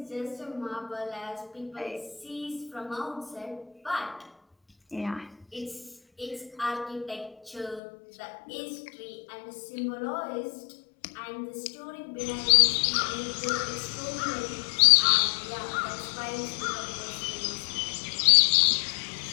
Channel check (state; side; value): drops out; right; at 7.8 s